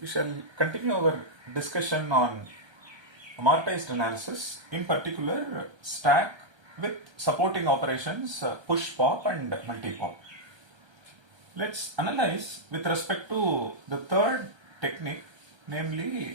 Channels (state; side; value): late; left; 1.3 ms